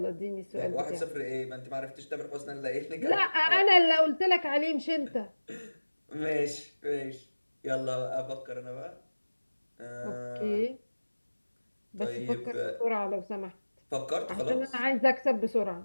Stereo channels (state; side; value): inverted; both; correlation -1.00